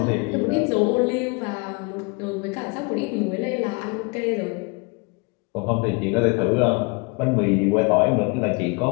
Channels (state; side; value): quieter; right; 29.9 dB